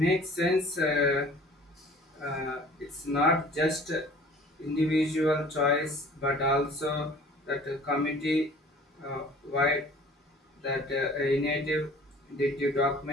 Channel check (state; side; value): normal; both; correlation 0.49